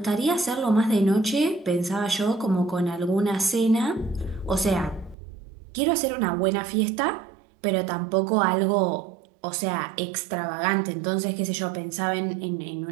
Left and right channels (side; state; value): left; drops out; at 5.2 s